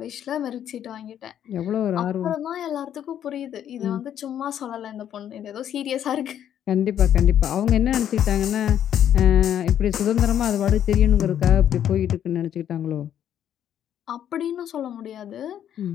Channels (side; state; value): right; quieter; 10.1 dB